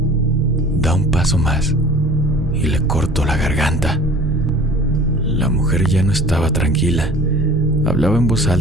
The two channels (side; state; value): both; normal; correlation 0.45